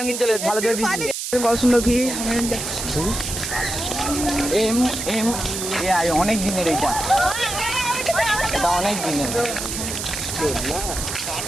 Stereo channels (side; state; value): right; noise; hiss, 5 dB below the sound